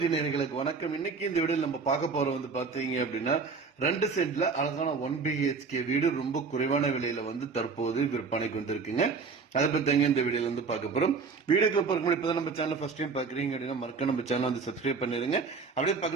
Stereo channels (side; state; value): left; quieter; 4.8 dB